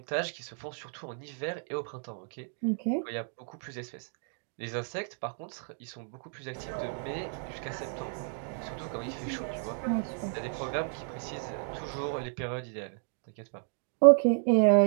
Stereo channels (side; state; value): left; silent; 56 dB below the other